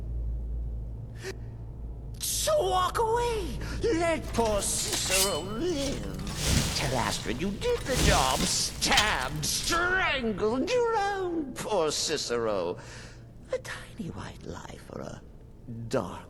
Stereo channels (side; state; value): both; identical; correlation 1.00